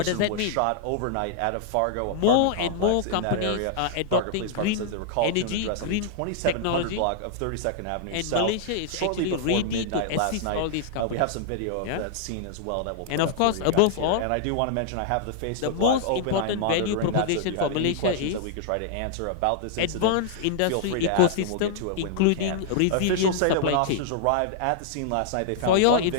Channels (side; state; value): both; different; correlation -0.01